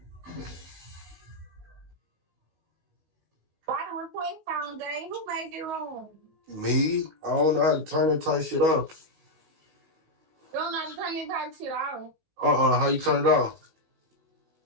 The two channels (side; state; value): left; late; 19 ms